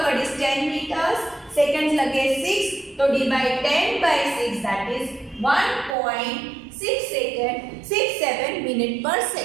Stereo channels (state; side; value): drops out; left; at 6.0 s